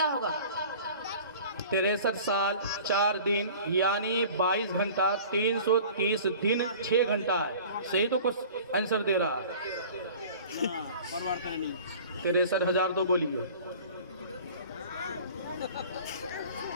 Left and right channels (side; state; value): both; inverted; correlation -0.44